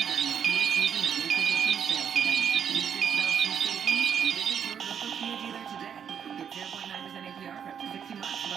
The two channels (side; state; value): left; quieter; 8.0 dB